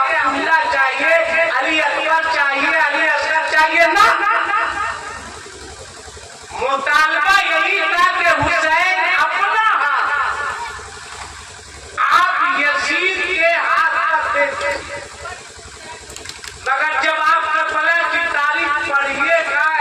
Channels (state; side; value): identical; both; correlation 1.00